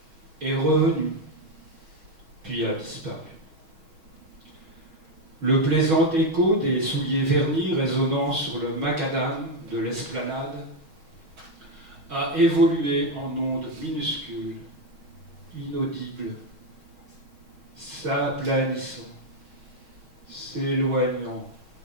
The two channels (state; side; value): late; left; 6.3 ms